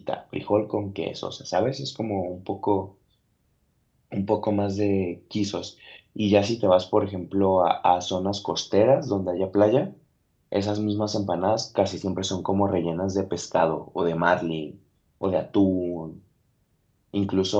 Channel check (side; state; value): both; identical; correlation 1.00